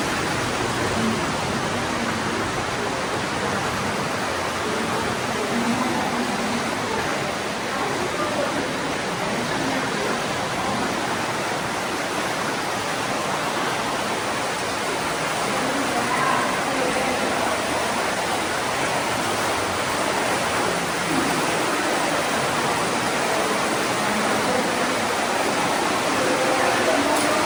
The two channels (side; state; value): both; identical; correlation 1.00